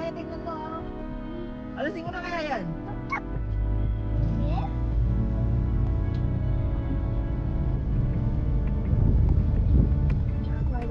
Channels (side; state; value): both; identical; correlation 1.00